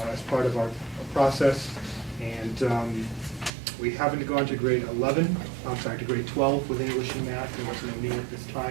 as part of our process. And we haven't gone to grade 12 with English and math. There wasn't a need at this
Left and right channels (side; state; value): left; drops out; at 3.5 s